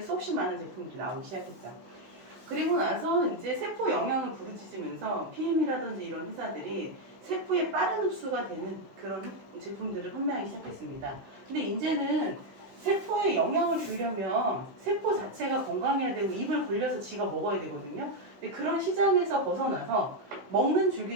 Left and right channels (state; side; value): late; left; 16 ms